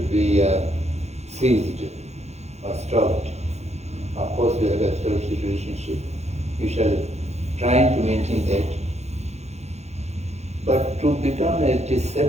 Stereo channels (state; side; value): late; left; 0.32 ms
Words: be seized or stopped. Of course, you have established a relationship. You shall try to maintain that. But to become a